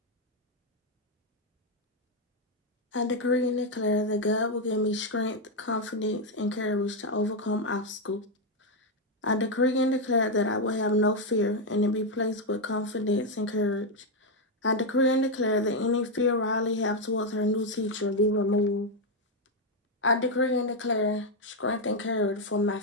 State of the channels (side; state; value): both; normal; correlation 0.03